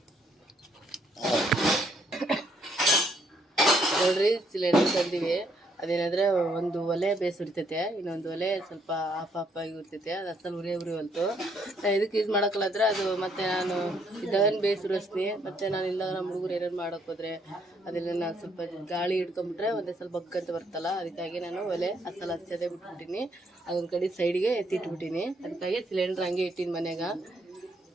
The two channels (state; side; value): normal; both; correlation 0.70